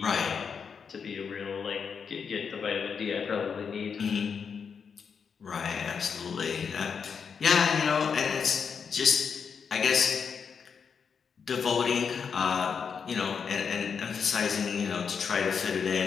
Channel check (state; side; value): quieter; right; 6.3 dB